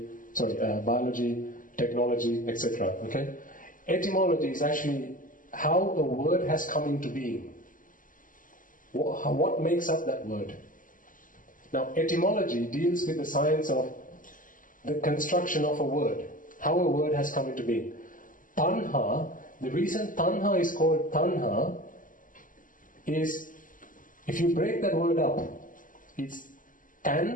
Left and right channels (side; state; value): right; late; 0.39 ms